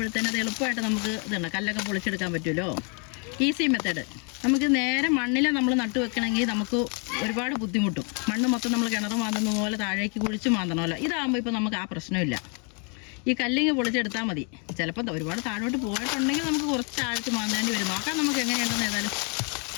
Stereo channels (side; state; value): right; quieter; 36.7 dB